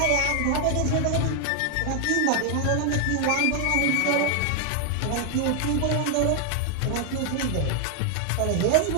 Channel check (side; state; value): both; different; correlation 0.00